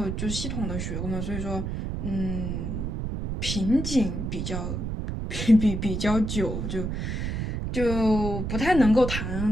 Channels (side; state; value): right; noise; rumble, 3 dB below the sound